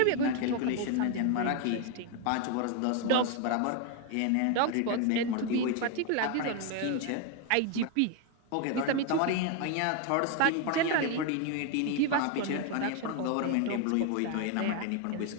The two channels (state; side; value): different; both; correlation 0.01